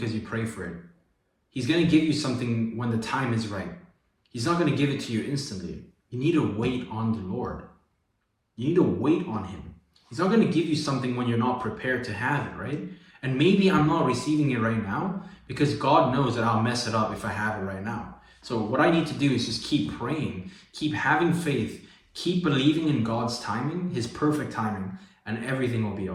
you pray for it. He's going to give you something when the time is right. He's not going to give it to you instantly. You need to wait on the Lord. You need to wait on him. He's not going to give you something when you're not prepared to have it, right? And maybe I'm not receiving it right now because God knows that I'll mess it up if I have it right now. So what I need to do is just keep praying, keep having faith, keep believing in God's timing, his perfect timing, and everything will be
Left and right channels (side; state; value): both; identical; correlation 1.00